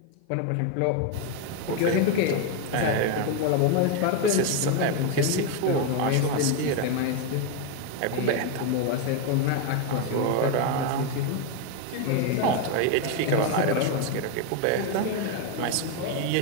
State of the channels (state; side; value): different; both; correlation 0.02